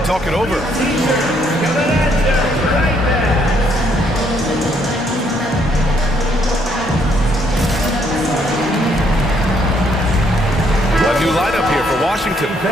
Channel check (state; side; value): normal; both; correlation 0.70